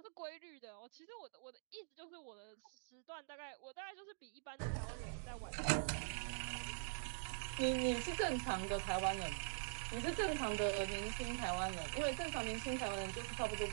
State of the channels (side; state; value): left; silent; digital silence